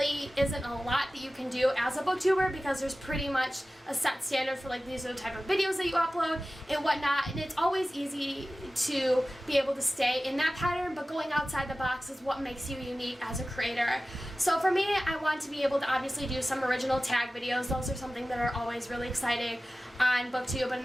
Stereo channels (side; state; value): both; normal; correlation 0.96